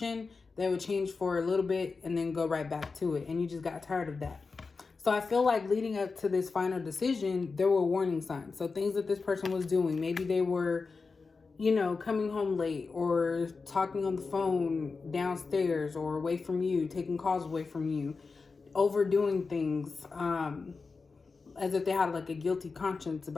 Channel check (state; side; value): quieter; right; 4.4 dB